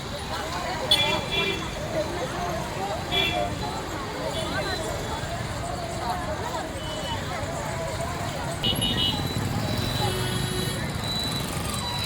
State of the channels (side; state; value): both; identical; correlation 1.00